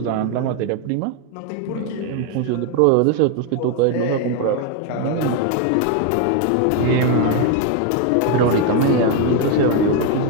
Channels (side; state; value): both; different; correlation 0.01